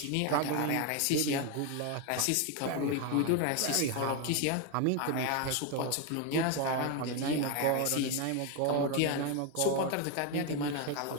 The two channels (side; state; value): both; different; correlation 0.01